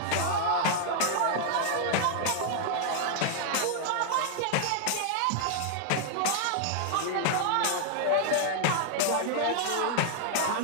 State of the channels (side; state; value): both; different; correlation -0.01